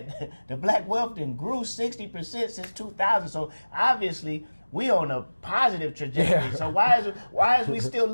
the black wealth then grew 60% since 2000. So obviously we on a positive trajectory. Yeah. So why is we still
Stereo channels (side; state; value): both; inverted; correlation -1.00